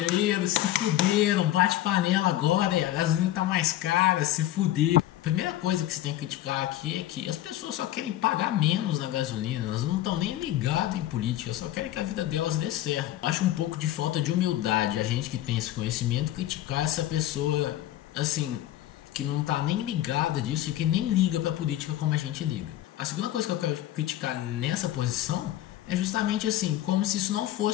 se fuderam, bate panela agora, a gasolina tá mais cara, se fuderam. A primeira coisa que você tem que criticar aqui é que as pessoas só querem pagar menos na gasolina, elas não estão nem ligadas em política, só querem que a vida delas dê certo. Eu acho um pouco de falta de humildade a gente que tem esse conhecimento criticar essa pessoa assim, que não tá nem ligada disso e que nem liga pra política como a gente liga. A segunda coisa que eu quero criticar nessa posição é justamente assim, como se isso não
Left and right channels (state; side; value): quieter; right; 13.7 dB